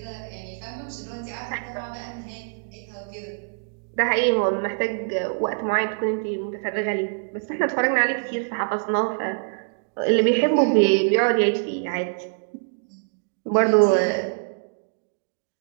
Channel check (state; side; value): silent; left; digital silence